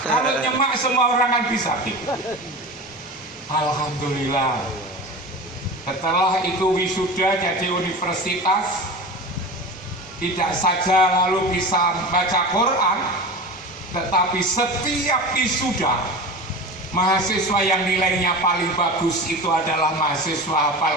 Kalau nyemak semua orang kan bisa. Alhamdulillah. Setelah itu wisuda jadi universitas, tidak saja lalu bisa baca Quran, tetapi setiap wisuda mahasiswa yang nilainya paling bagus itu adalah mahasiswa hafal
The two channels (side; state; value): both; normal; correlation 0.31